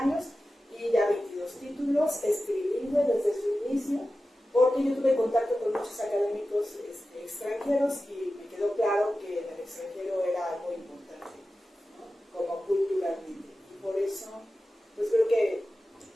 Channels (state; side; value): normal; both; correlation 0.94